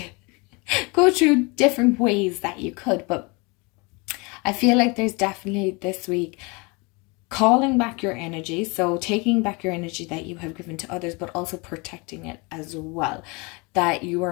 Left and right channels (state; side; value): quieter; right; 28.5 dB